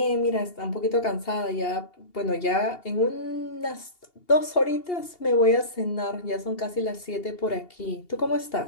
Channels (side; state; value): right; late; 2.8 ms